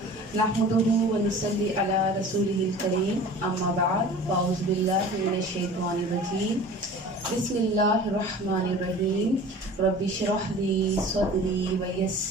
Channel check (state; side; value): normal; both; correlation 0.42